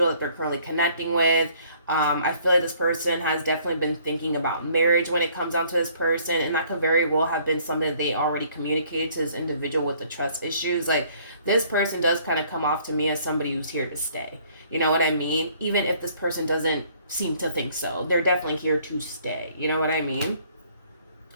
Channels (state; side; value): inverted; both; correlation -0.60